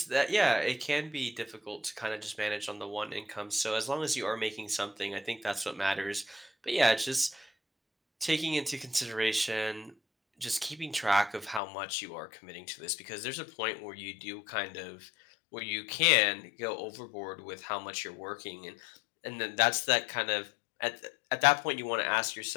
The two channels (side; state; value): right; drops out; at 11.6 s